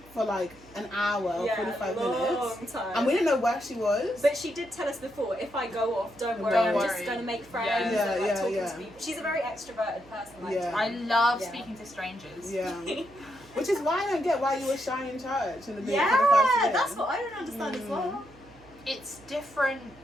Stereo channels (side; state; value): right; noise; hum, 24 dB below the sound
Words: for like an hour, 45 minutes, time. and we didn't know where she was. But she did tell us before, if I go off, don't worry, Don't I'm worry. just going to make friends Yeah. and like Yeah, talking yeah. to people. She's a very extroverted person. Like, Yeah. I love Yeah. speaking to strangers. Yeah, which is why I don't get why you were shy in church in the beginning yeah, for the first year. that's what I don't understand as well. It's different